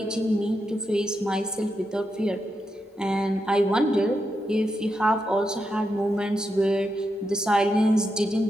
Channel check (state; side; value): normal; both; correlation 0.85